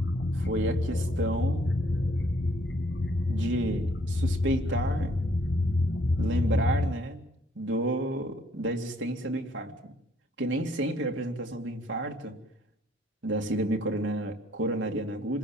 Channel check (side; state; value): both; normal; correlation 0.64